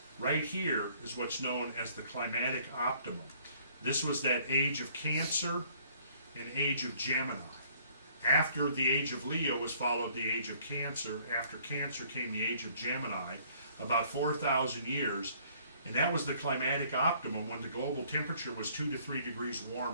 right here is what's known as the climatic optimum. This was that age of Cancer and age of Gemini. After the age of Leo was followed the age of Cancer. After Cancer came the age of Gemini, about 4,000 years. And that was the climatic optimum when the global temperature was 2 to 3 degrees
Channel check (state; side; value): inverted; both; correlation -0.60